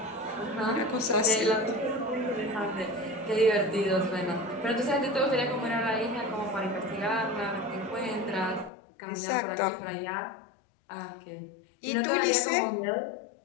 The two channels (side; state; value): right; drops out; at 8.7 s